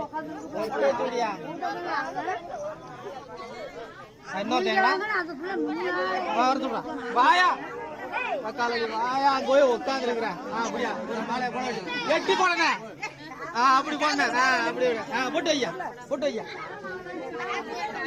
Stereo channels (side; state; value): both; identical; correlation 1.00